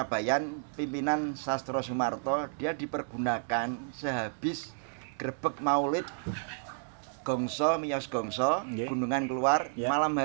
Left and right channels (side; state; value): left; silent; digital silence